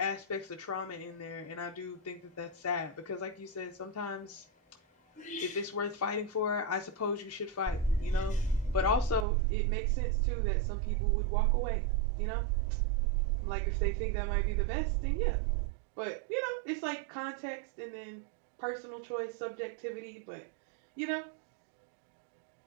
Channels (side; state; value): left; drops out; at 9.2 s